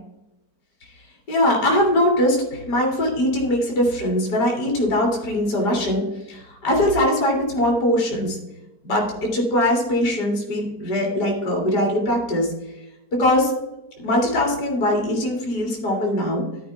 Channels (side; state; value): right; late; 4.5 ms